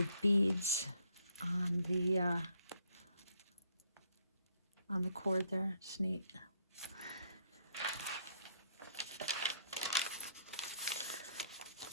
beads on the cord there. It's neat.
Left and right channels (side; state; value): both; inverted; correlation -0.69